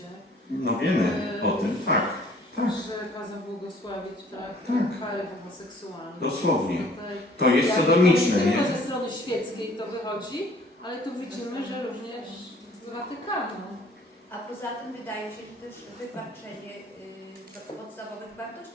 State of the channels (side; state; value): both; normal; correlation 0.56